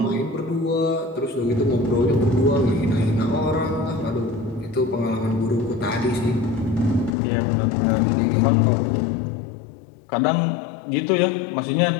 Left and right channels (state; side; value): drops out; right; at 7.1 s